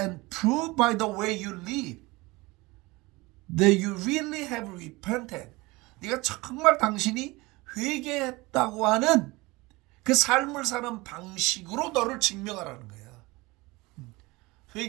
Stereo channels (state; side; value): quieter; left; 22.6 dB